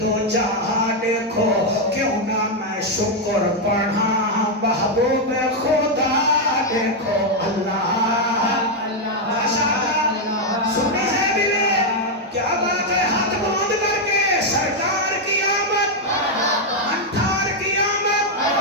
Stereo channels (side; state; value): both; normal; correlation 0.01